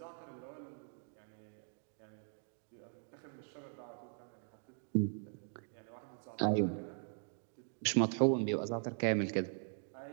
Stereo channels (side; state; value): left; silent; 51 dB below the other